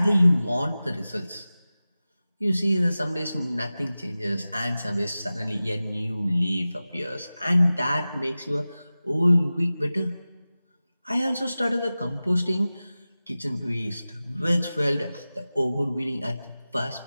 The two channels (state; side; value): inverted; both; correlation -0.96